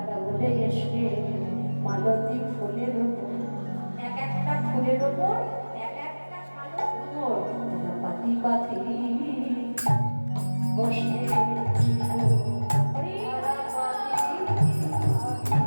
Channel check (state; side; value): inverted; both; correlation -1.00